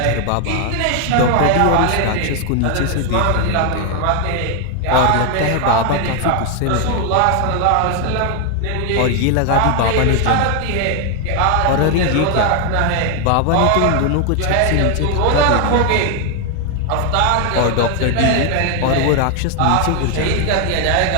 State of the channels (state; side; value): different; both; correlation 0.00